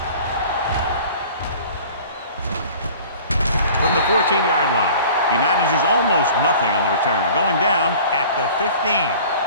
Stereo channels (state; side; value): inverted; both; correlation -0.45